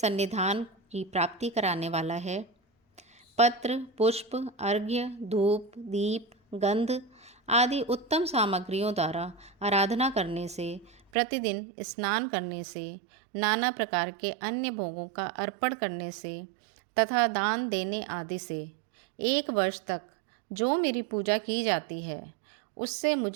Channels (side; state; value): left; drops out; at 11.0 s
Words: की प्राप्ति कराने वाला है। पत्र, पुष्प, अर्घ्य, धूप, दीप, गंध आदि उत्तम सामग्रियों द्वारा आराधना करने से, प्रतिदिन स्नान करने से, नाना प्रकार के अन्य भोगों का अर्पण करने से तथा दान देने आदि से 1 वर्ष तक जो मेरी पूजा की जाती है, उससे